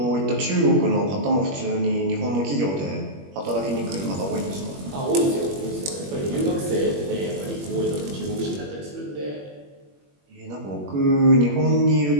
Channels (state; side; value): late; left; 21 ms